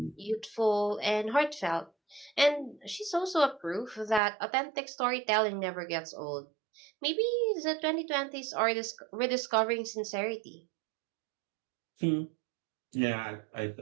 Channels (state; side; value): drops out; left; at 4.2 s